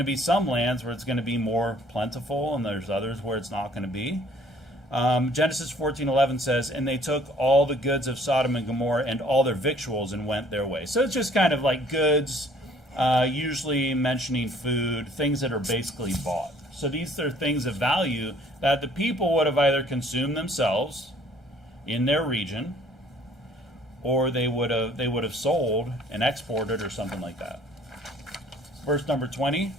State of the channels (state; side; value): normal; both; correlation 0.57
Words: be some lands where it's going to be more plentiful, and there's others where it's not going to be. Genesis 14:11 says, "And they took all the goods of Sodom and Gomorrah and all their victuals and went their way." So it's just kind of like goods, usually mentioning food, things that are basically bought. So these are things of value that the people would have either consumed themselves in their region, or they would have sold and exported or something like that. Verse number 20.